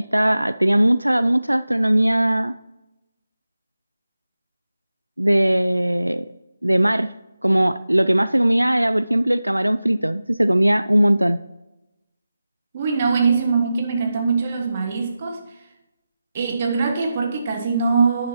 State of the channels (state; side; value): inverted; both; correlation -0.94